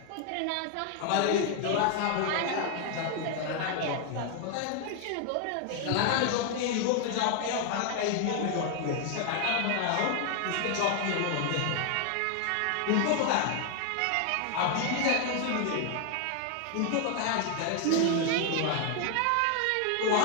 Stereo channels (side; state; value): both; different; correlation 0.00